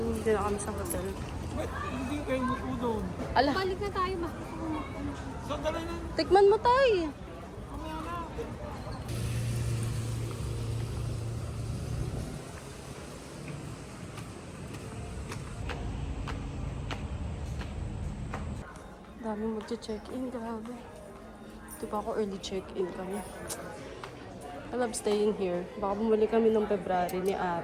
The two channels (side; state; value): both; identical; correlation 1.00